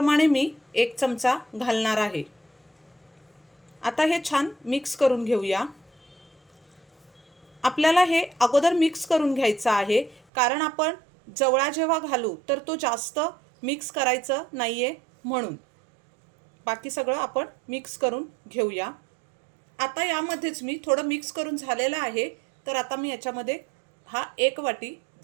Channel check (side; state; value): left; drops out; at 10.2 s